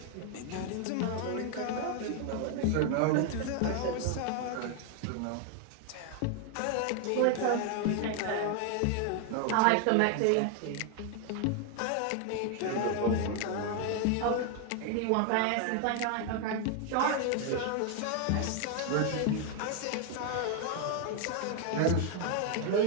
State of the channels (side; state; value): both; different; correlation 0.01